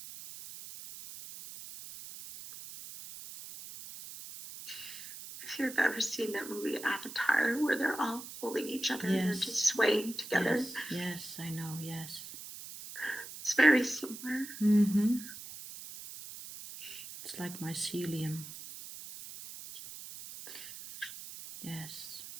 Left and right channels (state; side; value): noise; right; hiss, 12 dB below the sound